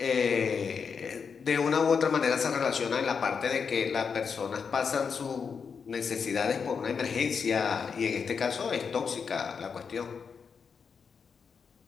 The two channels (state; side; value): quieter; right; 6.0 dB